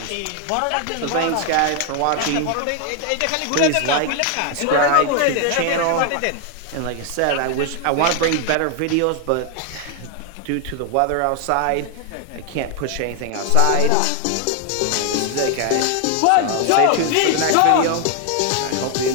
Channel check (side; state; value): both; different; correlation 0.01